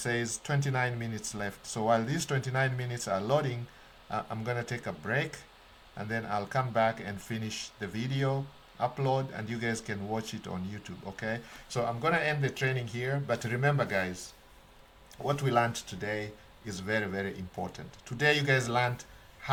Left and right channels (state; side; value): identical; both; correlation 1.00